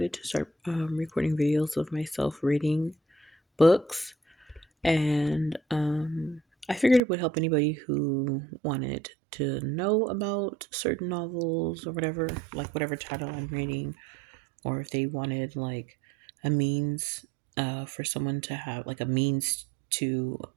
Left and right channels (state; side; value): drops out; left; at 7.0 s